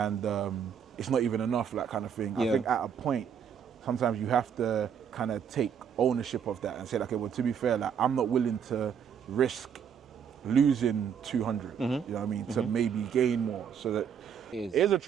it's not even enough, that kind of thing. I think at a point, sometimes you have to kind of take ownership of that and say, like, okay, well, to be fair, like I'm not willing to risk losing 200. You know what I mean? To maybe gain more. So that it is a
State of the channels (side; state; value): left; quieter; 7.7 dB